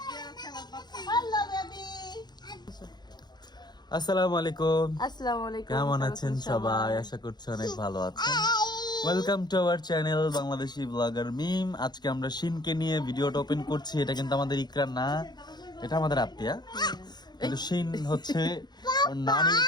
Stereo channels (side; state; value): right; late; 0.20 ms